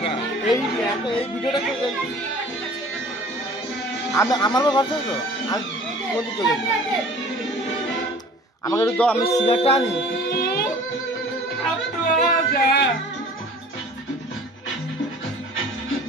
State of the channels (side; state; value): both; normal; correlation 0.47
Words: এই ভিডিওটা আমি আমার ভরসা তো আমি কোন চলে আমাকে একটু দাও আমি সিগারেটটা আনি